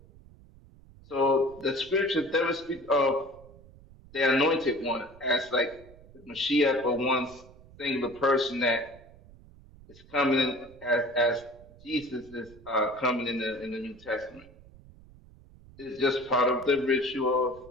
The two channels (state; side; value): noise; right; rumble, 23 dB below the sound